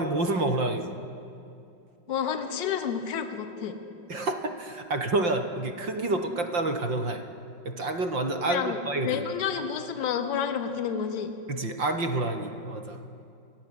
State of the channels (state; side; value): late; left; 5.7 ms